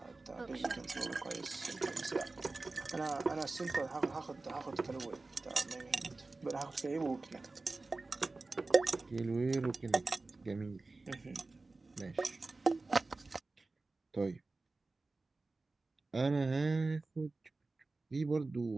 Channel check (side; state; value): left; quieter; 3.5 dB